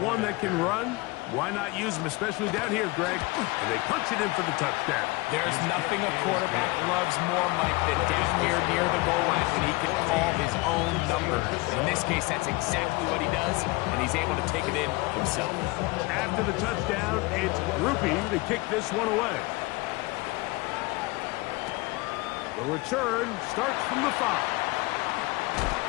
one that can run, Why not use him, especially down here, Greg? And they punch it in for the touchdown. There's nothing a quarterback loves more, Mike, than down here near the goal line when he can call his own number. In this case, that's exactly what he does, and he's able to take it in himself. After the touchdown, it's Groupie to kick this one away. The return starts from the 5.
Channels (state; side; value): quieter; right; 23.6 dB